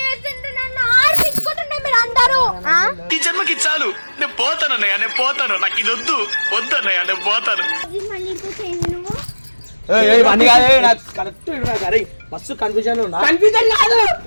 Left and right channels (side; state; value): both; inverted; correlation -1.00